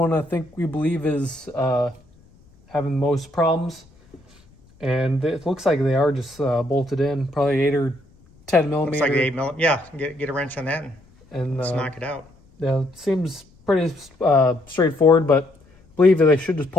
I think we believe is having the most problems. And it looks like they are just bolted in, probably 8 or 10 millimeter. Looks like 8 millimeter. Yeah, get a wrench on that and let's knock it out. Yeah, it seems pretty straightforward, but I believe that they should just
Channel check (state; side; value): noise; left; rumble, 29 dB below the sound